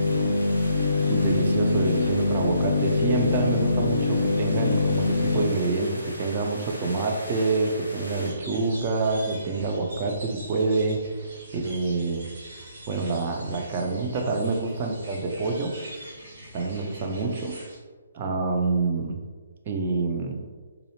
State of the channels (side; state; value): both; inverted; correlation -0.65